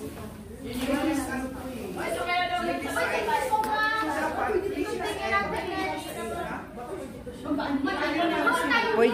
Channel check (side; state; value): both; identical; correlation 1.00